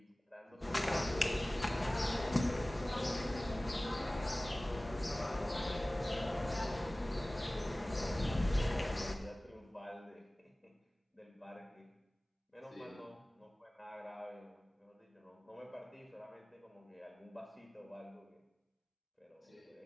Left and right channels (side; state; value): both; normal; correlation 0.98